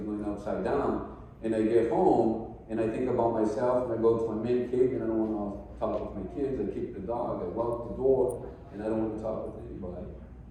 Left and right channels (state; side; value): identical; both; correlation 1.00